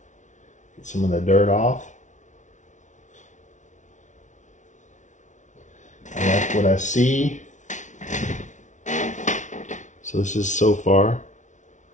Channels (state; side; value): late; right; 0.36 ms